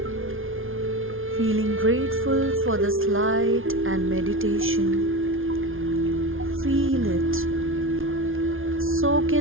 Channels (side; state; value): left; late; 0.59 ms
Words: Feeling grateful for this light and meditation. Feel it. Soak